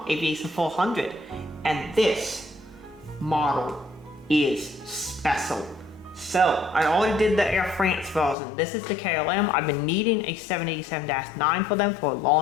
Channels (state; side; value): drops out; right; at 8.3 s